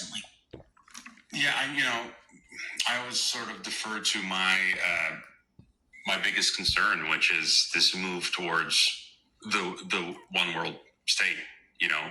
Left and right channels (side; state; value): both; identical; correlation 1.00